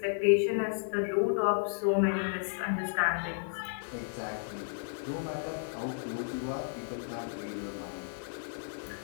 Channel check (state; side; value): silent; right; 56 dB below the other